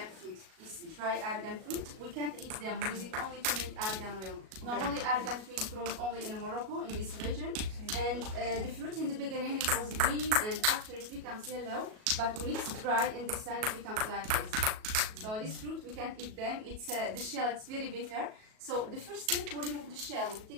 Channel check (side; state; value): left; late; 37 ms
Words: fruit. This dry argan fruit, we can't eat them. We use it only to make argan oil. Normally, argan tree grows only in Morocco, in this region. And the fruit in the beginning, it was green, and after it becomes yellow. But when it's dry in the sun, it becomes like this. So this fruit, we can't eat them. It's the shell, it's very bitter. So the first step, we remove the shell. We